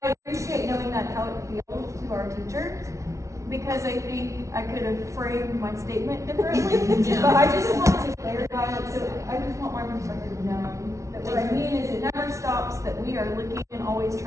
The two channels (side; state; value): left; late; 0.14 ms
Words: I appreciate knowing that's how it feels to our teachers, because I think I could have framed my statement differently, but I just want to clarify it, so I just want my perspective known. That what I mean is it never stops, that we are looking and always